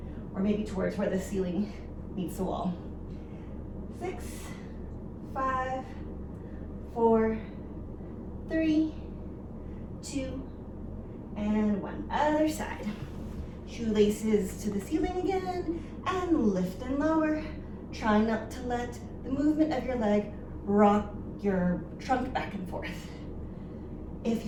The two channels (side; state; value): both; identical; correlation 1.00